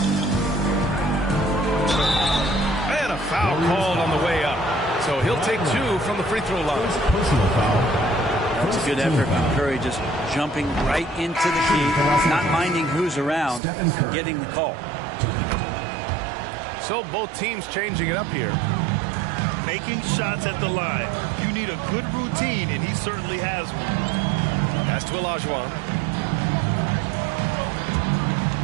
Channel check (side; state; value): left; drops out; at 13.6 s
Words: And a foul called on the way up. So he'll take 2 from the free throw line. Personal foul. That's a good effort from Curry, just jumping right into the key, not minding who's around, and getting the call. So both teams changing it up here. Making shots at the line. You need a good routine, and he certainly has one. Pass to Olajuwon.